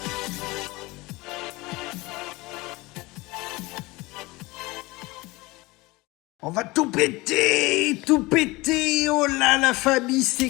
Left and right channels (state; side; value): quieter; right; 22.2 dB